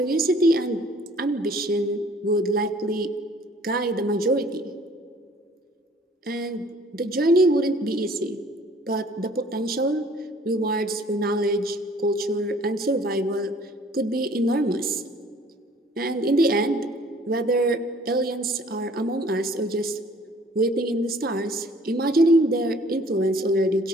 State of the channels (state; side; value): normal; both; correlation 0.55